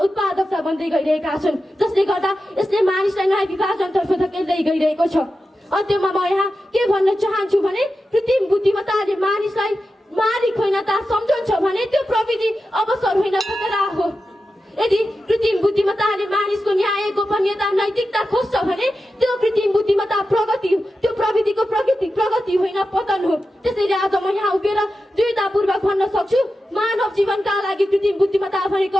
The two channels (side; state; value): both; normal; correlation 0.91